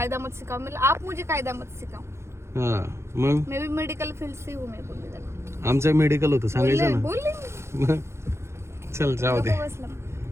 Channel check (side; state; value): left; late; 0.13 ms